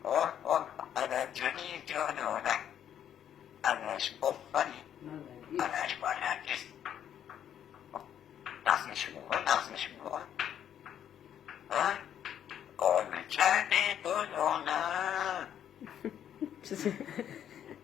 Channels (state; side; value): quieter; right; 9.8 dB